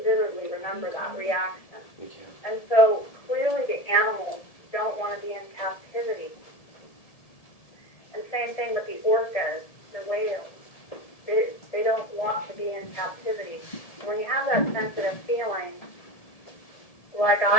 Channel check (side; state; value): right; late; 1.7 ms